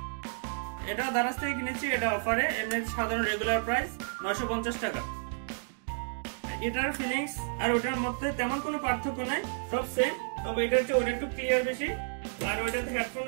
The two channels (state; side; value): silent; left; digital silence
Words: এটা দারাজ থেকে কিনেছি, এটা অফারে, এমনি সাধারণ রেগুলার প্রাইস 950 টাকা। এটার ফিলিংস আর ওটার মধ্যে তেমন কোনো পার্থক্য নাই, সব সেম। তবে এটা হচ্ছে ওটা একটু ক্লিয়ার বেশি, আর ওইটাতে হেডফোন